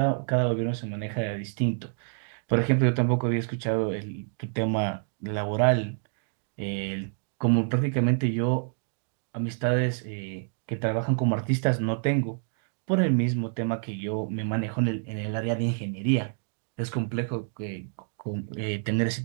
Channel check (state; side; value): silent; left; digital silence